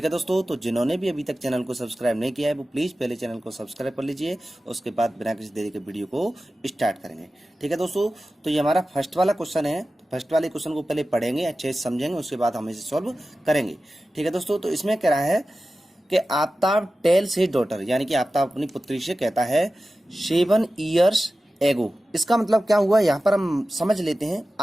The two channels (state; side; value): normal; both; correlation 0.95